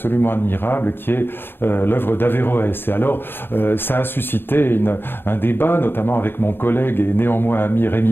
admirable, qui est l'œuvre d'Averroès. Et alors, ça a suscité un débat, notamment avec mon collègue et néanmoins ami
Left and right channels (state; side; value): late; right; 0.10 ms